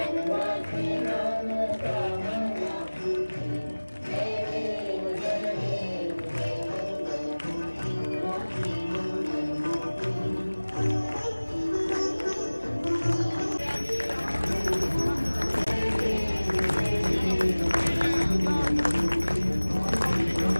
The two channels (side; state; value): both; inverted; correlation -1.00